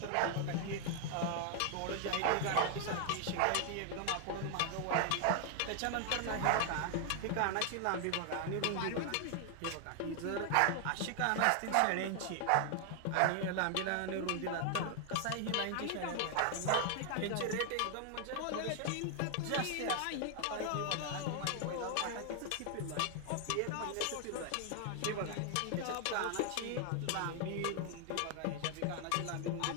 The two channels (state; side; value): different; both; correlation 0.00